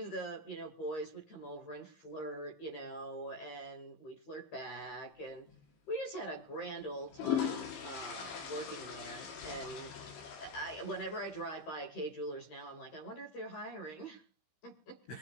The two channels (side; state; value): right; late; 15 ms